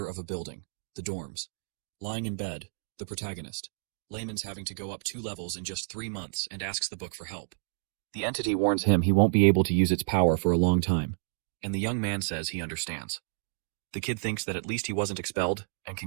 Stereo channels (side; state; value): left; silent; digital silence